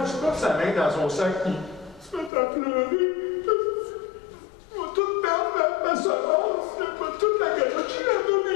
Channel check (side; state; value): right; drops out; at 2.3 s